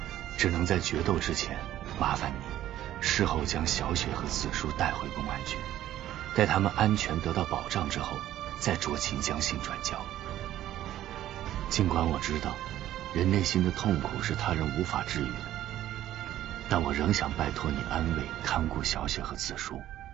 只能在决斗之前麻烦你事后将小雪和子舒带回公安局，待他们安全得到保障之后，再酌情将信转交。尽管我知道人内心的痛苦是他人无法治愈的，但我仍想拜托你安慰看顾小雪和子舒，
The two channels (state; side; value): quieter; left; 12.9 dB